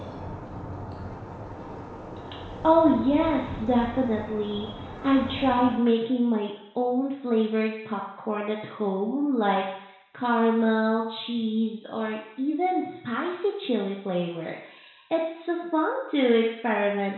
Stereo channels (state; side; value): identical; both; correlation 1.00